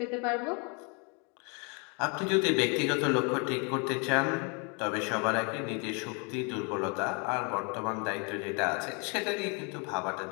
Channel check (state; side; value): quieter; right; 34.1 dB